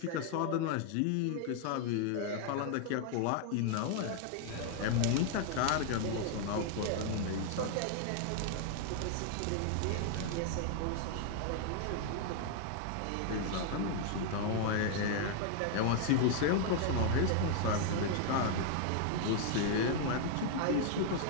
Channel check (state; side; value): different; both; correlation 0.00